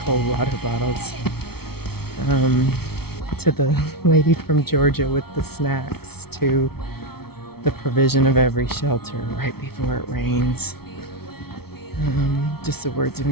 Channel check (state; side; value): late; right; 0.95 ms